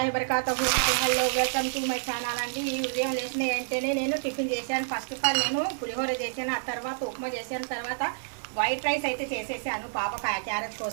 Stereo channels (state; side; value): silent; left; digital silence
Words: వబరకాతుహు. Hello, welcome to my channel అండి. ఈ ఉదయం లేచిన వెంటనే నేను టిఫిన్ చేశాను. ఫస్ట్ ఆఫ్ ఆల్ నేను పులిహోర చేశాను, ఆ తర్వాత ఉప్మా చేశాను, తర్వాత వైట్ రైస్ అయితే చేసేసాను పాప క్యారెట్